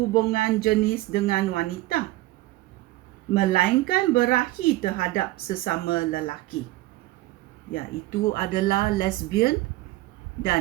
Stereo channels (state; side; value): quieter; left; 18.1 dB